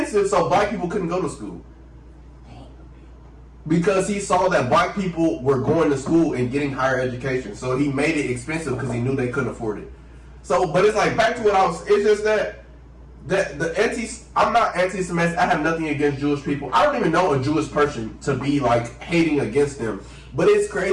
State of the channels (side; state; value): both; identical; correlation 1.00